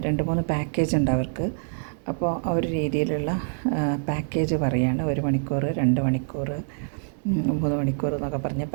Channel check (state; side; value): silent; left; digital silence